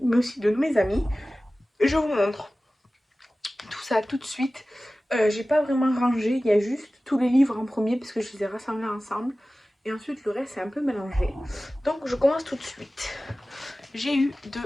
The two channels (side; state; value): both; normal; correlation 0.96